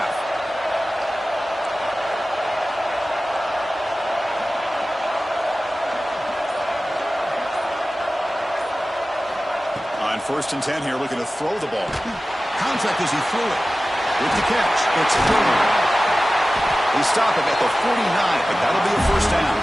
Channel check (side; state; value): both; normal; correlation 0.96